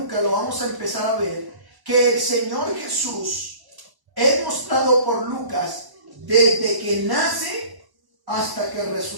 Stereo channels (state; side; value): late; left; 1.0 ms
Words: lo vamos a empezar a ver, que el Señor Jesús es mostrado por Lucas desde que nace hasta que